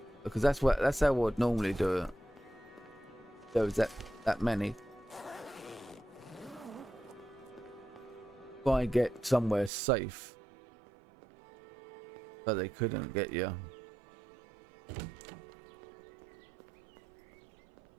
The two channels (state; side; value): drops out; left; at 9.7 s